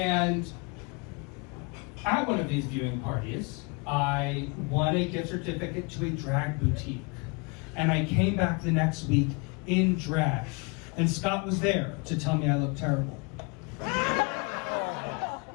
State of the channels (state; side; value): quieter; right; 30.9 dB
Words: at one of these viewing parties, I won a gift certificate to a drag boutique. And I came back the next week in drag. And Scott was there to tell me I looked terrible.